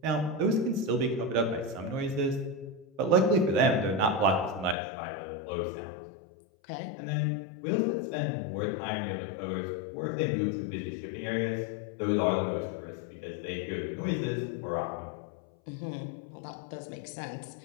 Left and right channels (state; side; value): drops out; right; at 4.8 s